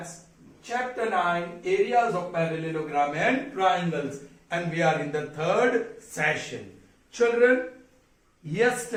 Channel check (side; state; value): both; identical; correlation 1.00